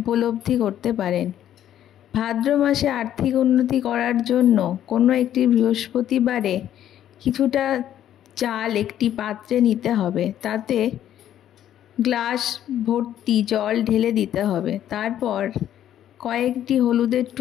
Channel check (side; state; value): right; quieter; 11.2 dB